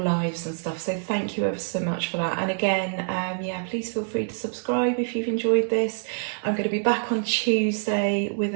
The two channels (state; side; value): silent; left; digital silence